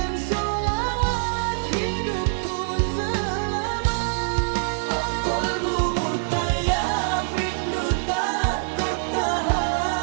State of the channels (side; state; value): left; silent; digital silence